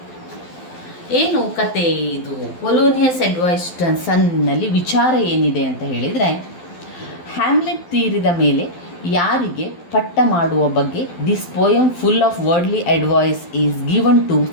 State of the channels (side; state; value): right; late; 12 ms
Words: ಏನು ಕತೆ ಇದು? ಪೊಲೋನಿಯಸ್ ಅಡ್ವೈಸ್ ಸನ್ನಲ್ಲಿ ವಿಚಾರ ಏನಿದೆ ಅಂತ ಹೇಳಿದರೆ, ಹ್ಯಾಮ್ಲೆಟ್ ತೀರಿದ ಮೇಲೆ ಯಾರಿಗೆ ಪಟ್ಟ ಮಾಡುವ ಬಗ್ಗೆ this poem full of worldly advice is given to